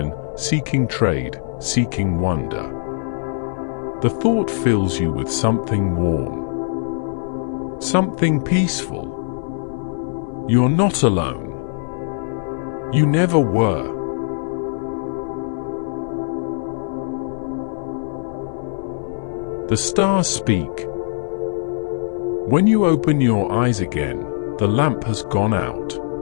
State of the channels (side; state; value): right; silent; 57 dB below the other